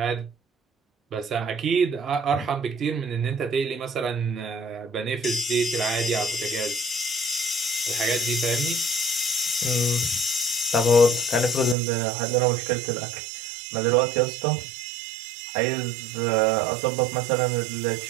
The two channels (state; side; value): drops out; left; at 11.8 s